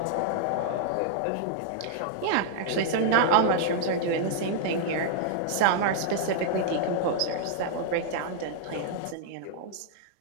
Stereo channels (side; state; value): both; different; correlation -0.01